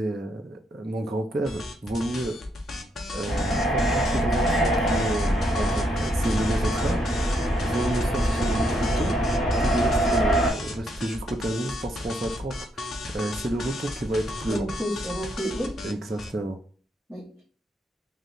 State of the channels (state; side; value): normal; both; correlation 0.76